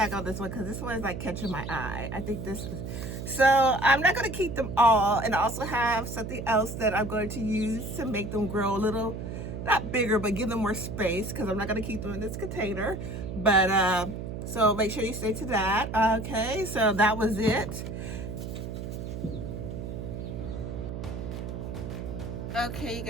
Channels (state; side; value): noise; right; hum, 6 dB below the sound